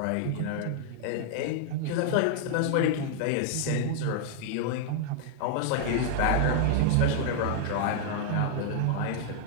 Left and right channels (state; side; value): different; both; correlation 0.00